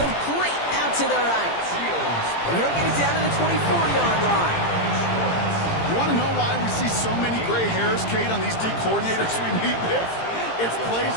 out to the right. And he'll get it down to the 24-yard line. You want to know why we see so many gray hairs, Kate, on these D coordinators we meet with? It's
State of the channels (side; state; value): right; late; 18 ms